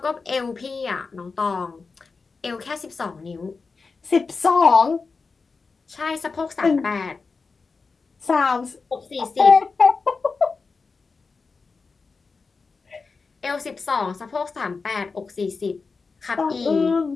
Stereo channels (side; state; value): right; quieter; 4.5 dB